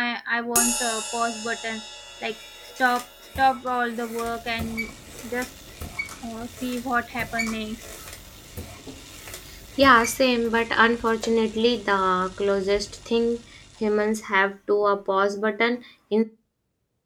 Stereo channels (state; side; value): identical; both; correlation 1.00